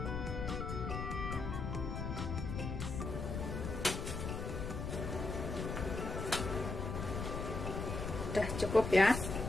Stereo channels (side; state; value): left; noise; rumble, 4 dB below the sound